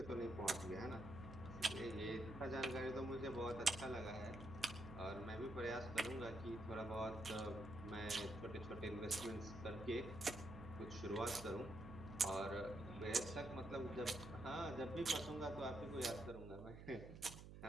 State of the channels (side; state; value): right; noise; hum, 12 dB below the sound